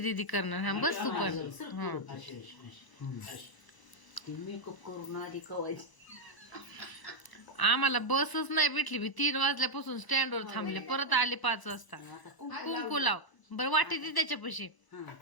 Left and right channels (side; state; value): right; late; 1.0 ms